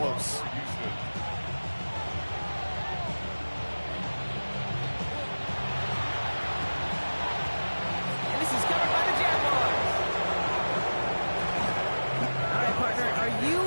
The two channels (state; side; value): inverted; both; correlation -1.00